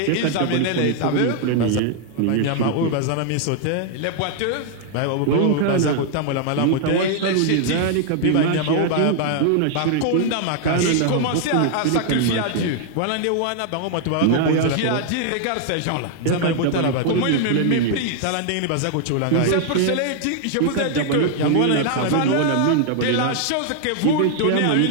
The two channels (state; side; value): different; both; correlation 0.00